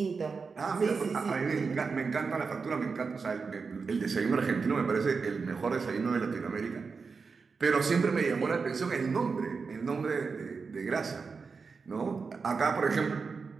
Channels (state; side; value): quieter; left; 4.9 dB